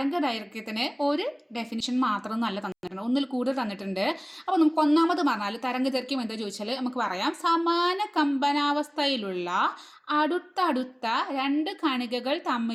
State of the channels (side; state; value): both; identical; correlation 1.00